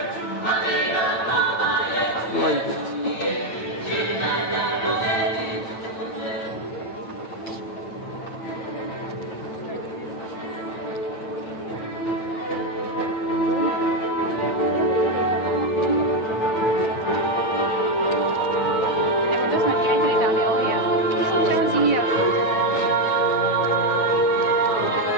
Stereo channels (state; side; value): late; right; 9.0 ms